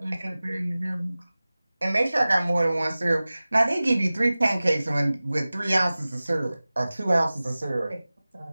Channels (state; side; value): inverted; both; correlation -0.98